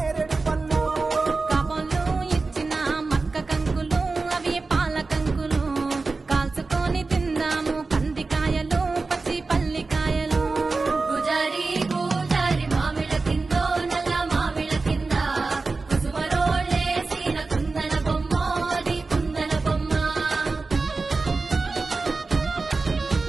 పండ్లు కాబోలు ఇచ్చిన మక్క కంకులు అవి పాల కంకులు కాల్చుకొని తిందాము కందికాయలు పచ్చి పల్లికాయలు గుజారి గుజారి మామిళ్ళ కిందో నల్ల మామిళ్ళ కింద కుసుమరోళ్ళేసిన కుందన బొమ్మ అది కుందన బొమ్మ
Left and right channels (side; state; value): left; quieter; 3.9 dB